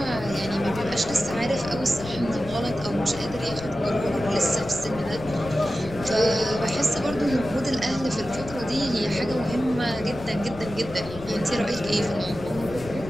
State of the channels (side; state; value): left; noise; rumble, 14 dB below the sound